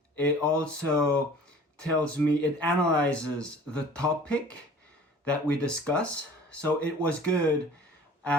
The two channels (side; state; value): both; normal; correlation 0.47